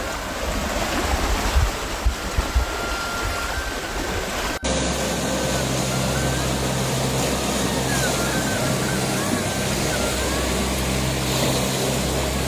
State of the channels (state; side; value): identical; both; correlation 1.00